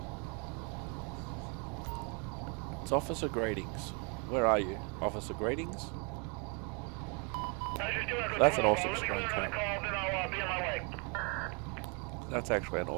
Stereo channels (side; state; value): left; quieter; 34.8 dB